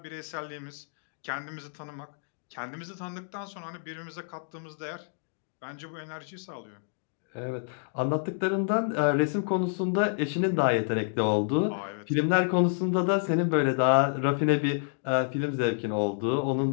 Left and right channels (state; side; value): silent; right; digital silence